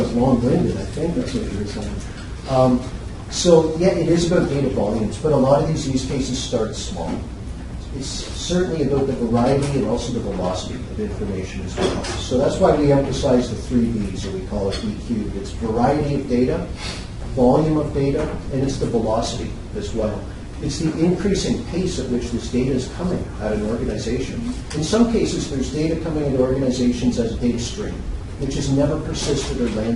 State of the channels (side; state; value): both; identical; correlation 1.00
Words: long-winded. I think that's what you were saying. So yeah, it is about data volumes, but a lot of these use cases start small. It's certainly about the variety and also the velocity of information as well. So that's why we emphasize the 3 V's, or we call it EQ. It's variety of data, volume of data, and it's the velocity as well. It's the increasing pace at which this data is coming at an organization. In some cases, there's data coming into organizations as a data stream, which has never persisted or